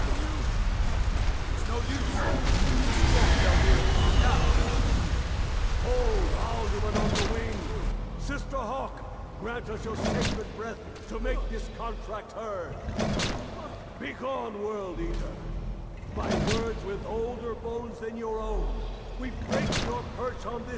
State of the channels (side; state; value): both; identical; correlation 1.00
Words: It's no use. Hold Alduin on the wing! Sister Hawk, grant us your sacred breath to make this contract heard. Begone, World Eater. By words with older bones than your own, we break your perch on